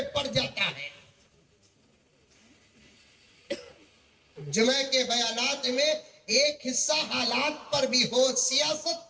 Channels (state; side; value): identical; both; correlation 1.00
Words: پڑ جاتا ہے. جمعہ کے بیانات میں ایک حصہ حالات پر بھی ہو,